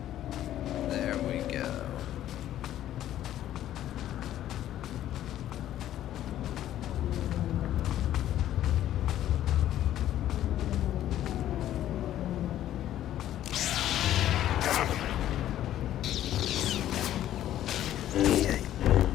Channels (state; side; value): quieter; right; 12.4 dB